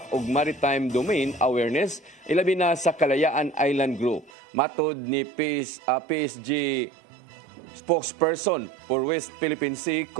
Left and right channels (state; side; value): drops out; left; at 4.3 s